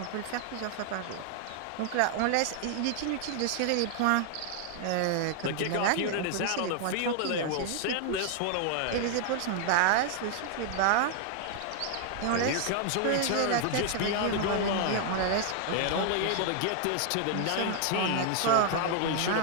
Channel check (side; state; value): both; different; correlation 0.00